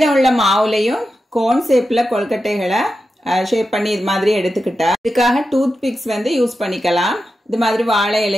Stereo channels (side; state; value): both; normal; correlation 0.90